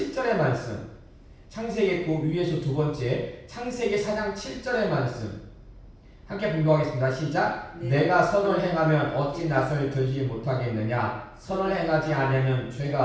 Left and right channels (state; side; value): identical; both; correlation 1.00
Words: 말씀, 창세기 그 위에서 두 번째 창세기 4장 7절의 말씀 함께 봉독하겠습니다. 시작. 네. 내가 선을 행하면 어찌 낯을 들지 못하겠느냐? 선을 행하지 않으면